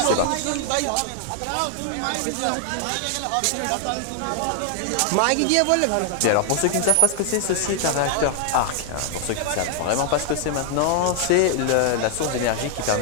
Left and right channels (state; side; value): different; both; correlation 0.00